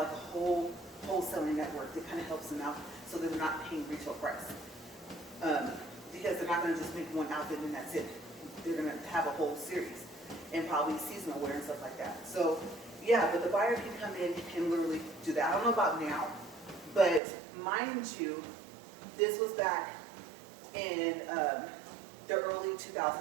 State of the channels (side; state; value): left; drops out; at 17.2 s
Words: a whole wholesaling network that kind of helps them out, so they're not paying retail price. Because they're not going to just make one outfit and that's it. They're going to have a whole series, and probably seasonal wear and stuff like that. So yeah, but the buyer can come in and literally do that. I don't know about now, but mind you, this was back in the early 2000s,